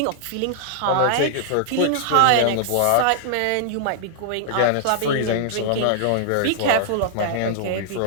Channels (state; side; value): different; both; correlation -0.01